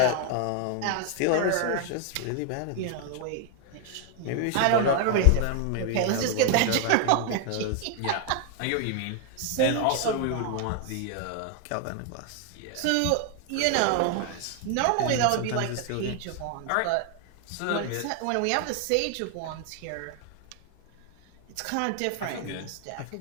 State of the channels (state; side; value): different; both; correlation 0.00